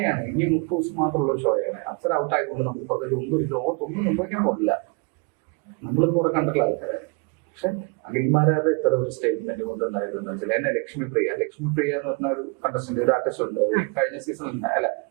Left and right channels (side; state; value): left; quieter; 32.2 dB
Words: ഇനി 30 ദിവസം മാത്രമുള്ള ഒരു ഷോയാണ്. അപ്സര ഔട്ട് ആയതുകൊണ്ട് നമുക്ക് പ്രത്യേകിച്ച് ലോകത്തൊന്നും സംഭവിക്കാൻ പോകില്ല. നമ്മളിത് കുറെ കണ്ടിട്ടുള്ള ആൾക്കാരാണ്. പക്ഷെ അഖിൽമാരാരുടെ ഇത്തരം ഒരു സ്റ്റേറ്റ്മെന്റ് കൊണ്ടുണ്ടായതെന്ന് വെച്ചാൽ, എന്നെ ലക്ഷ്മിപ്രിയ എന്ന് പറഞ്ഞ ഒരു കണ്ടസ്റ്റന്റ്, ഒരു ആർട്ടിസ്റ്റ് ഉണ്ട്. കഴിഞ്ഞ സീസണിൽ